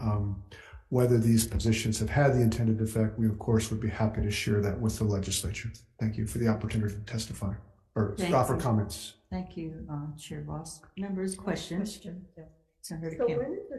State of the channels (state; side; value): identical; both; correlation 1.00